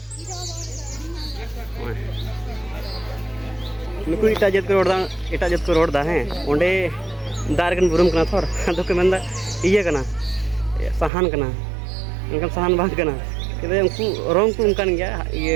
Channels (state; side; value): drops out; left; at 11.1 s